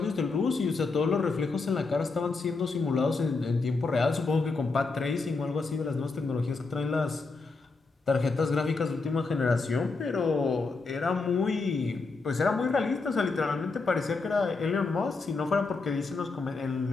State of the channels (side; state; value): right; quieter; 4.0 dB